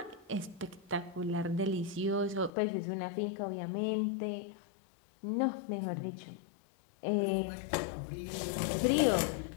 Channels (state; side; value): drops out; right; at 2.5 s